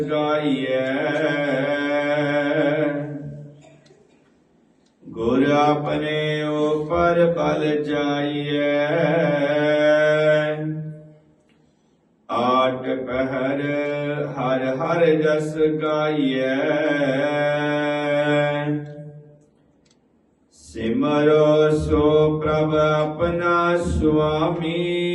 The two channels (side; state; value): both; identical; correlation 1.00